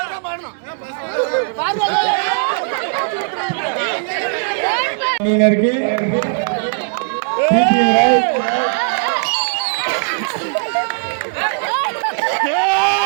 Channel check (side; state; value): left; silent; digital silence